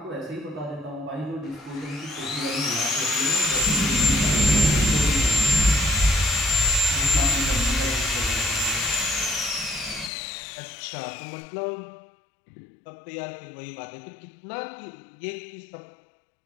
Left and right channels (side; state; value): right; drops out; at 10.1 s